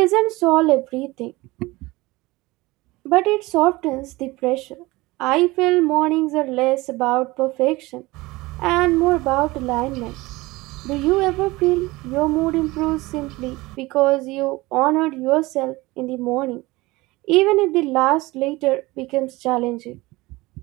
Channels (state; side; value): quieter; left; 21.0 dB